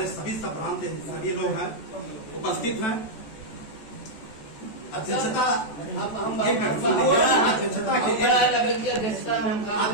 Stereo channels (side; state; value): right; late; 14 ms